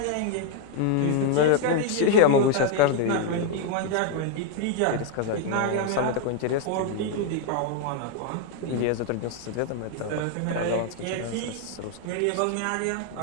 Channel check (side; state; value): both; different; correlation 0.00